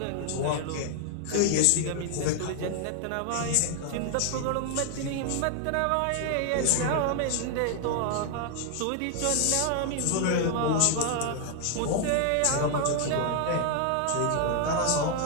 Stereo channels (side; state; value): both; different; correlation 0.00